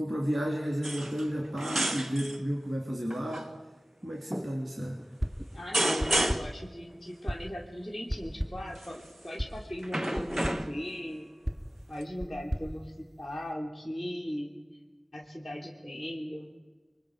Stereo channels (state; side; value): normal; both; correlation 0.96